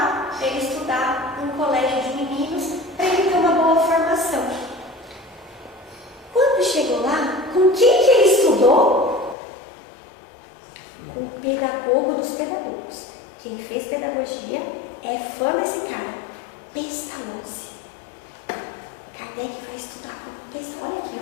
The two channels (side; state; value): right; drops out; at 9.3 s